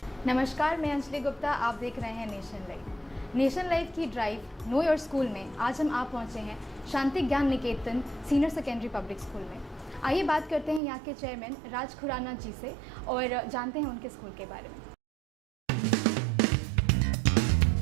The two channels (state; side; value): drops out; left; at 10.8 s